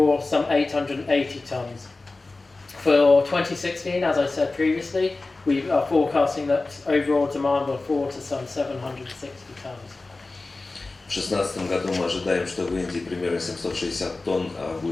some 880 tons. For 2016, as I said previously, we are forecasting that overall demand will fall to some 760 tons. В 2016 году мы ожидаем, что в Индии примерно 760 тонн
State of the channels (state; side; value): quieter; right; 3.4 dB